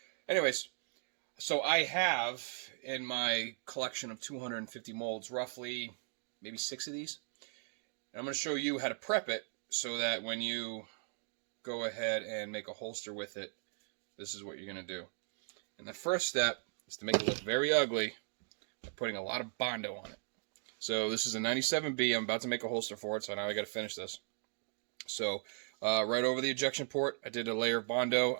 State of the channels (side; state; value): left; silent; 53 dB below the other